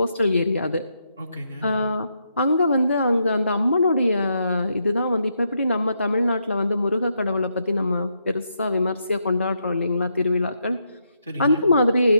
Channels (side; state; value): both; inverted; correlation -0.80